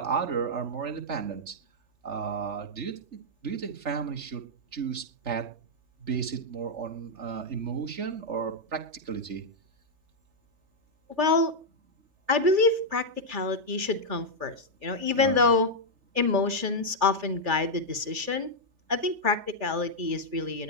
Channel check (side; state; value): left; late; 3.4 ms